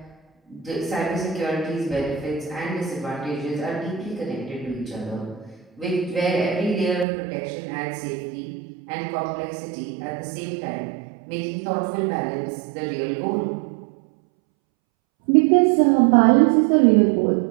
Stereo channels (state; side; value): drops out; left; at 7.1 s